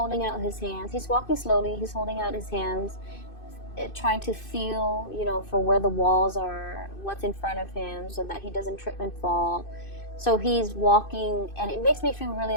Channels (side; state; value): right; late; 2.5 ms